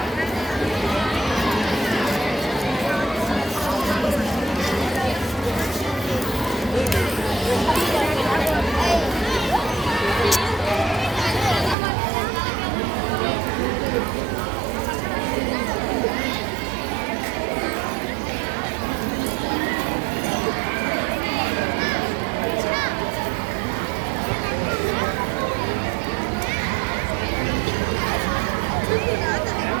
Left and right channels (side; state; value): left; drops out; at 11.8 s